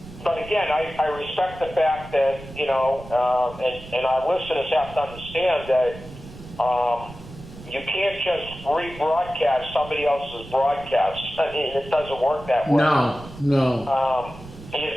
but again, I respect the fact that, and our listeners have to understand that you can't just rebroadcast somebody else's broadcast. I mean, it doesn't work that way. No.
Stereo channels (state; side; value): noise; right; rumble, 16 dB below the sound